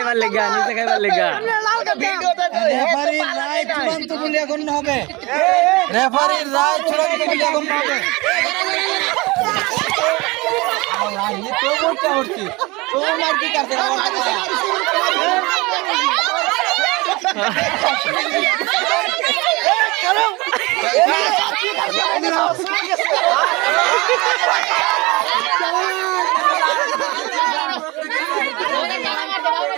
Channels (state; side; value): quieter; left; 23.8 dB